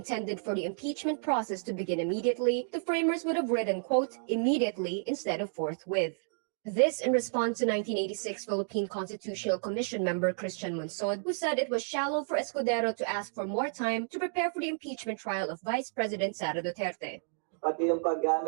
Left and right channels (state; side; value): silent; left; digital silence